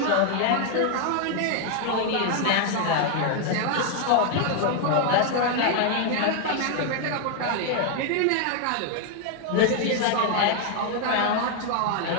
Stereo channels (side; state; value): both; different; correlation 0.00